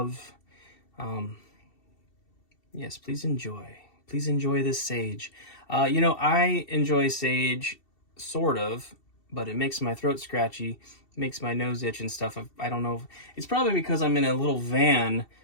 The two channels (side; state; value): right; late; 2.7 ms